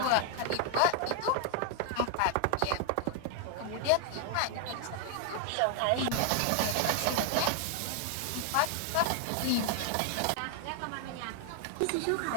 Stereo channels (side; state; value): both; different; correlation 0.00